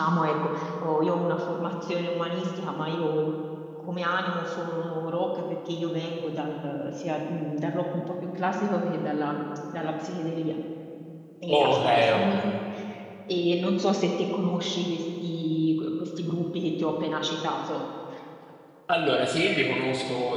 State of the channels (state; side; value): identical; both; correlation 1.00